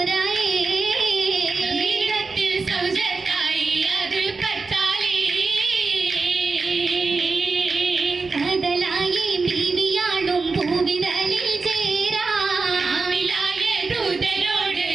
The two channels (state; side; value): quieter; left; 4.2 dB